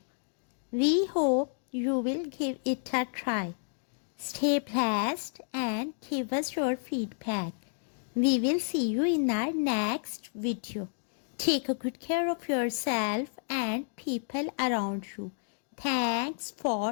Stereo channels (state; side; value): silent; right; digital silence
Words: We hope you will give it a try. Stay blessed and give us your feedback. We will see you in our next video. Take a good care of yourself and people around you. Thanks